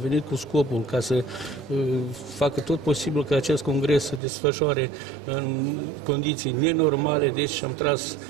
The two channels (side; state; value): left; drops out; at 4.2 s